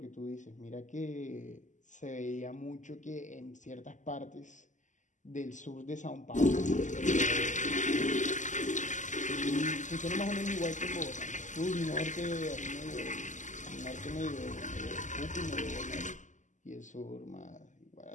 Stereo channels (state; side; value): late; right; 0.36 ms